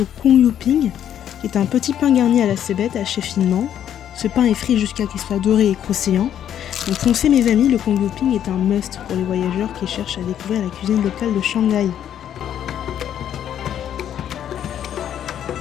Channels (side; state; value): right; quieter; 10.1 dB